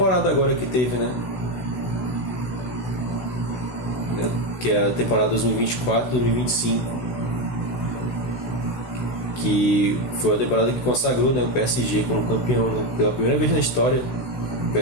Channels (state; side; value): late; right; 16 ms